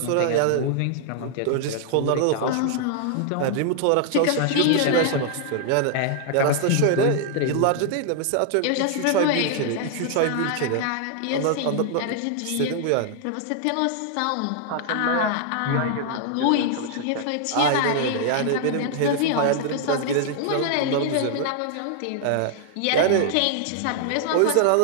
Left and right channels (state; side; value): different; both; correlation 0.00